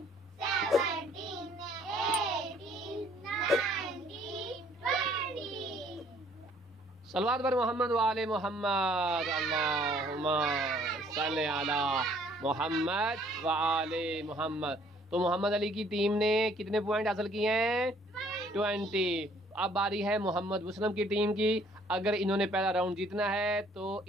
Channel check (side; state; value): both; normal; correlation 0.60